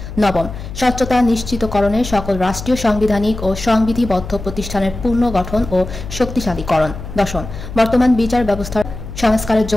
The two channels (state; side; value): noise; left; hum, 10 dB below the sound